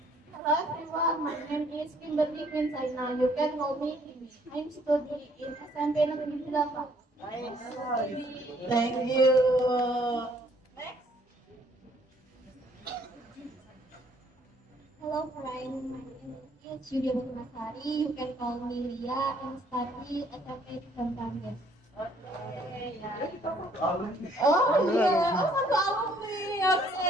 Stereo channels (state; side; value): normal; both; correlation 0.63